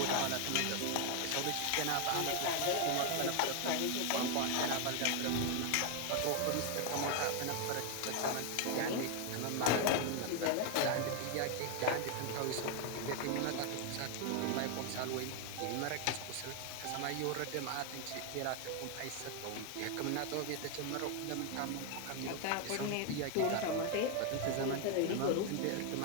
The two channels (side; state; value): both; different; correlation 0.01